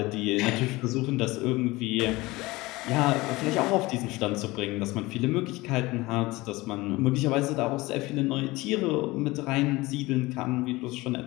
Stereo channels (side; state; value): right; quieter; 20.9 dB